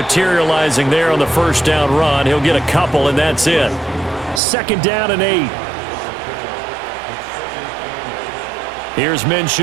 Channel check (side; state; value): left; drops out; at 4.4 s